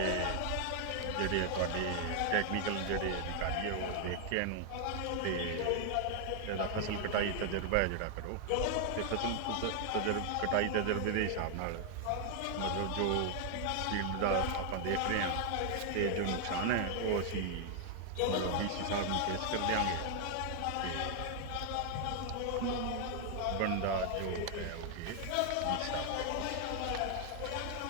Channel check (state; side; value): different; both; correlation 0.00